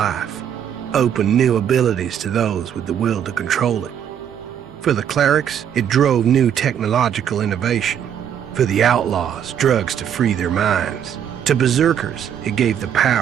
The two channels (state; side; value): quieter; left; 9.0 dB